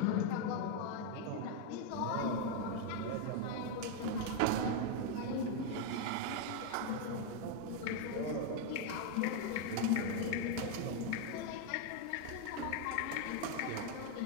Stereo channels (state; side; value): different; both; correlation 0.01